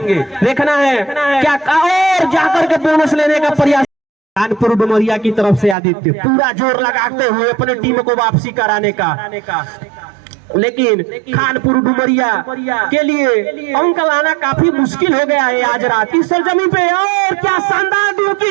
देखना है क्या और जाकर के बोनस लेने का प्रयास। खानपुर डुमरिया की तरफ से आदित्य पूरा जोर लगाते हुए अपने टीम को वापसी कराने का, लेकिन खानपुर डुमरिया के लिए अंक लाना काफी मुश्किल हो गया है आज रात इस सरजमी पे। और क्या शानदार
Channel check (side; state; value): left; drops out; at 5.8 s